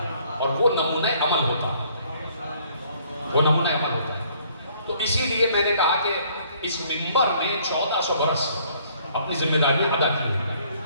اور وہ نمونہ عمل ہوتا ہے, وہ نمونہ عمل ہوتا ہے. تو اسی لیے میں نے کہا کہ اس منبر نے 1400 برس اپنی ذمہ داریاں ادا کی ہیں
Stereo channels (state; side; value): inverted; both; correlation -0.62